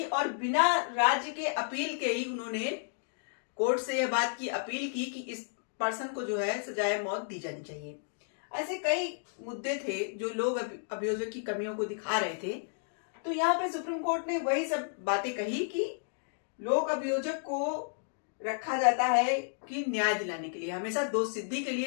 और बिना राज्य के अपील के ही उन्होंने कोर्ट से यह बात की अपील की कि इस पर्सन को जो है सजाए मौत दी जानी चाहिए। ऐसे कई मुद्दे थे जो लोग अभियोजक की कमियों को दिखा रहे थे। तो यहाँ पे सुप्रीम कोर्ट ने वही सब बातें कही कि लोक अभियोजक को रखा जाता है कि न्याय दिलाने के लिए, हमेशा दोष सिद्धि के लिए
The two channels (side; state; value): right; silent; digital silence